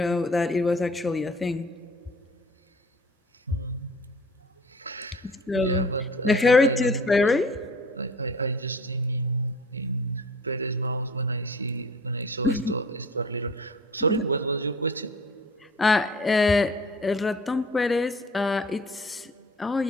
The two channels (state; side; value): normal; both; correlation 0.46